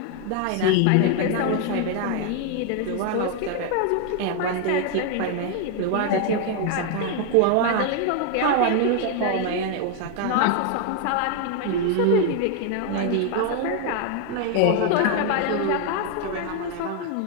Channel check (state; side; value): different; both; correlation 0.00